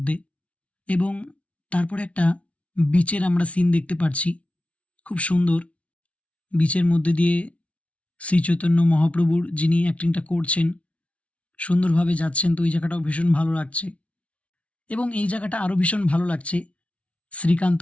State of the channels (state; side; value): late; right; 0.063 ms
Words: এবং তারপরে একটা বিচের আমরা সিন দেখতে পাচ্ছি, খুব সুন্দর। বিচের মধ্যে দিয়ে শ্রী চৈতন্য মহাপ্রভুর যিনি অ্যাক্টিংটা করছেন সুন্দরভাবে যাচ্ছেন, তো এই জায়গাটাও ভীষণ ভালো লাগছে। এবং এই জায়গাটা আরও ভীষণ ভালো লাগছে,